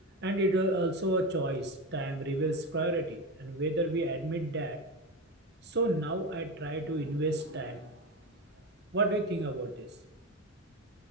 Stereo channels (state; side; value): normal; both; correlation 0.20